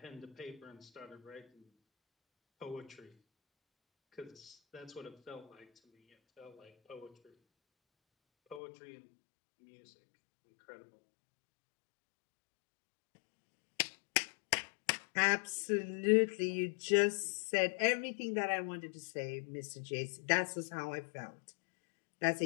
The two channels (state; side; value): drops out; right; at 8.6 s